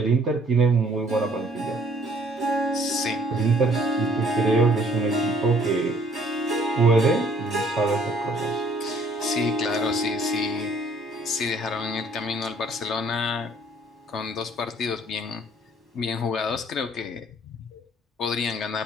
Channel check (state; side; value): normal; both; correlation 0.60